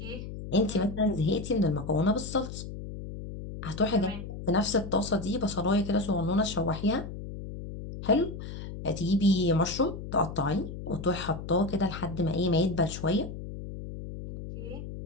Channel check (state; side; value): noise; left; hum, 9 dB below the sound